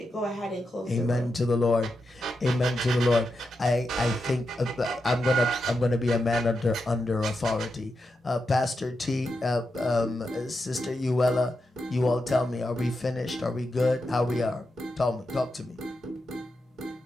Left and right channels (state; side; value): normal; both; correlation 0.87